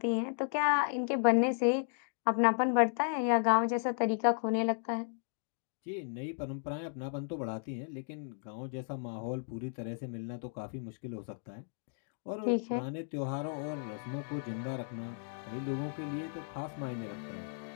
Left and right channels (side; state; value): right; silent; digital silence